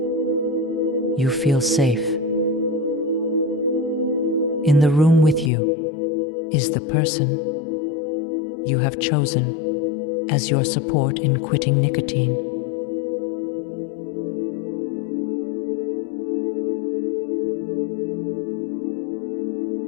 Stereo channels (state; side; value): drops out; right; at 5.5 s